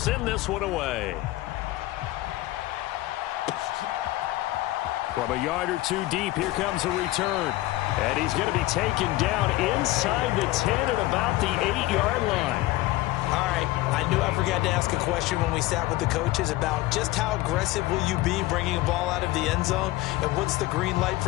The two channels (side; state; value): right; quieter; 17.7 dB